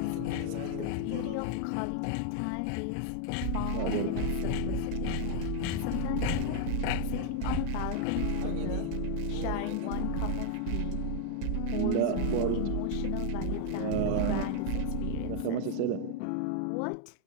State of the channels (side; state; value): both; different; correlation 0.00